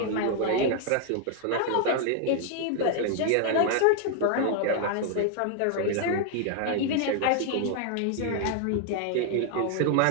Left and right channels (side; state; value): both; different; correlation 0.00